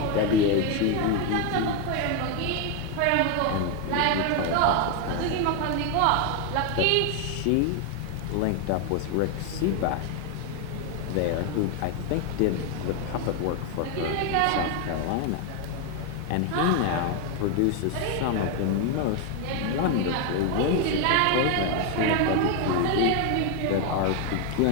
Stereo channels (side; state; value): both; different; correlation 0.01